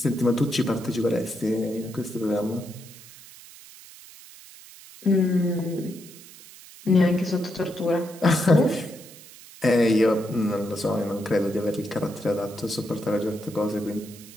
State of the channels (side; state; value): right; noise; hiss, 19 dB below the sound